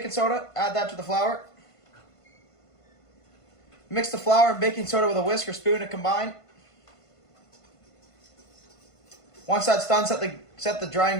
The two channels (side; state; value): right; late; 1.5 ms